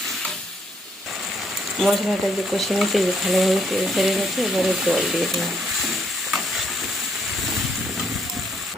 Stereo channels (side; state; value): both; normal; correlation 0.71